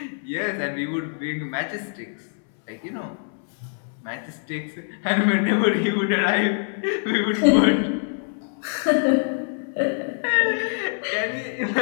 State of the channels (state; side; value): silent; right; 62 dB below the other